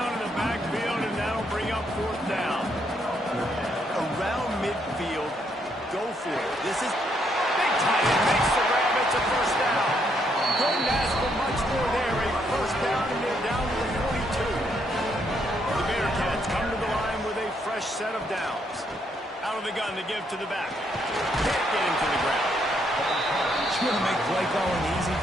in the backfield, and that'll bring up 4th down. Around midfield, go for it. This is big tight end, makes the grab, it's a 1st down. Couldn't ask for much more there, a 1st down, and they're down to the 42. The Bearcats come to the line with a fresh set of downs. Out of the gun to give to the back. Can't get him to the ground. You want to make play calling easy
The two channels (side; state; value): both; normal; correlation 0.74